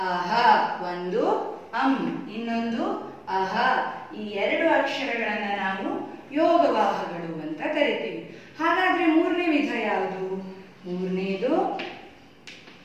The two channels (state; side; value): identical; both; correlation 1.00